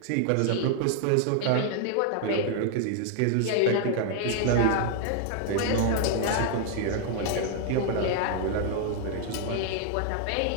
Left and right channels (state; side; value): different; both; correlation 0.00